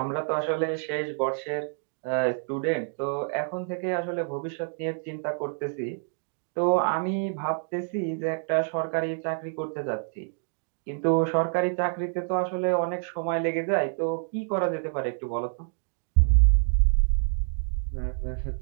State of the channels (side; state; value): left; silent; 60 dB below the other